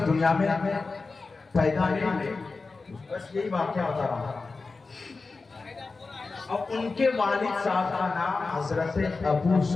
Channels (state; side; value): quieter; right; 4.0 dB